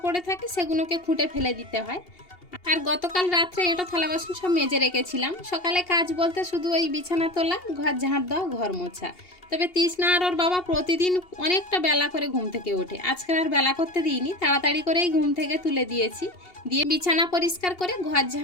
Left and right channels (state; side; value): late; right; 2.8 ms